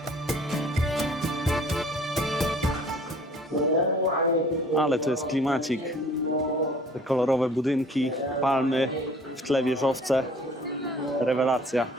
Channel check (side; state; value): both; normal; correlation 0.52